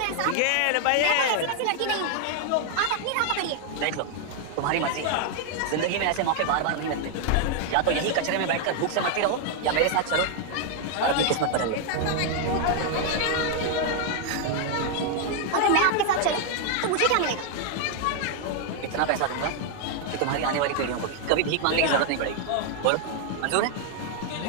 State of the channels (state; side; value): different; both; correlation 0.00